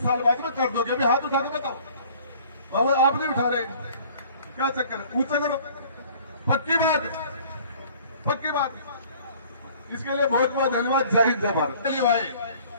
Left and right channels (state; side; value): inverted; both; correlation -0.52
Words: साल बाद में कर दोगे। अभी हाथ उठा के बताओ। बाबा आप नहीं उठा रहे, क्या चक्कर? ऊंचा करो, पक्की बात। इसके लिए बहुत बहुत धन्यवाद। जय हिंद, जय भारत। चलिए भाई,